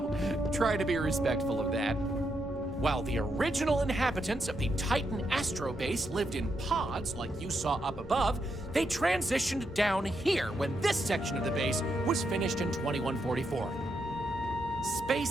try to be respectful of that. While the original inhabitants of the Titan Astro Base lived in pods like you saw up above, they transitioned down here when this section of the base was finished in 2144.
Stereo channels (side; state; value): both; normal; correlation 0.81